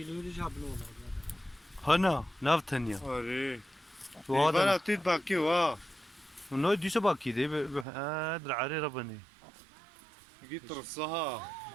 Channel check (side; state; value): left; drops out; at 7.9 s